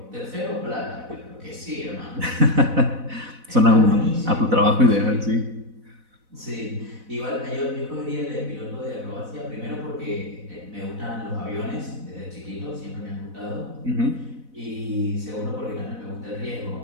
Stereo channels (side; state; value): left; late; 4.0 ms